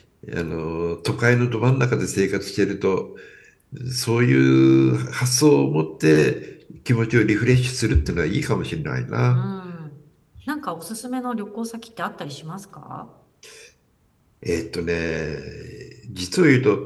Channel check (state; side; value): identical; both; correlation 1.00